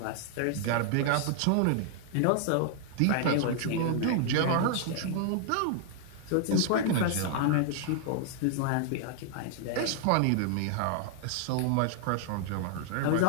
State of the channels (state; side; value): different; both; correlation 0.00